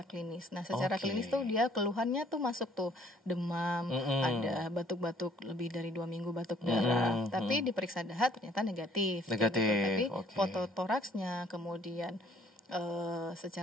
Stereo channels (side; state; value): both; normal; correlation 0.59